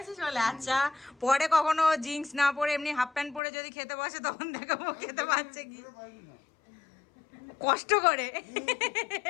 আছে চলে। আচ্ছা পরে কখনো জিন্স না পরে এমনি হাফ প্যান্ট পরে যদি খেতে বসে তখন দেখাবো খেতে পারছে কি কষ্ট করে।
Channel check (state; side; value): drops out; right; at 3.4 s